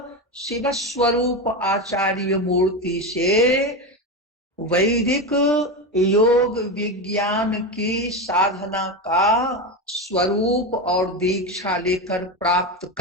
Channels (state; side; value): normal; both; correlation 0.17